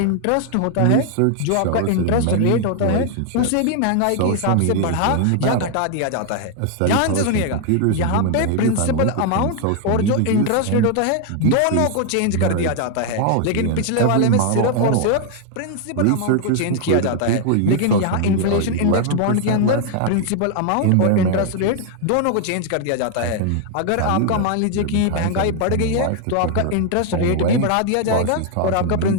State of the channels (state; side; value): different; both; correlation 0.00